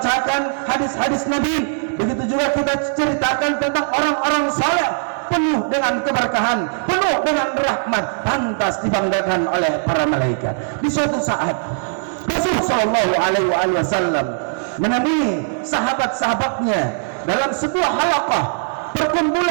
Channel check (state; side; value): silent; left; digital silence